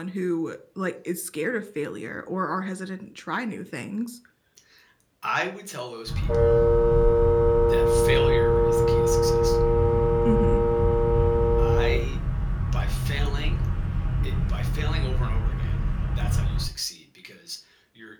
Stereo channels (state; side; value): identical; both; correlation 1.00